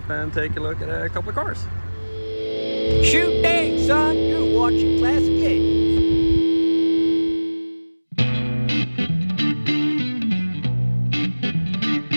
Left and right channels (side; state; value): both; inverted; correlation -1.00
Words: and take a look at a couple of cars. Shoot dang, son, you're watching Classic 80s.